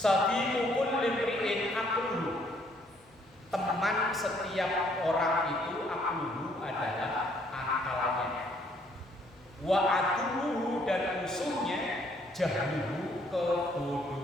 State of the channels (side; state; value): right; noise; hum, 28 dB below the sound